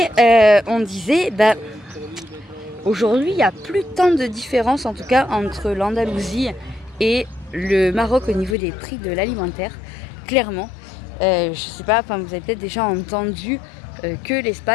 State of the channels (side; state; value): right; drops out; at 8.6 s